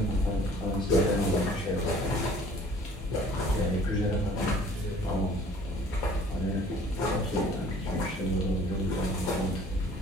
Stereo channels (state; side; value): normal; both; correlation 0.52